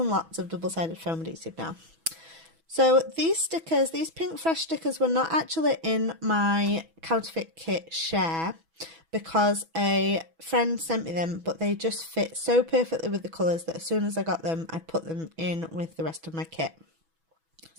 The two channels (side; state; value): left; late; 6.1 ms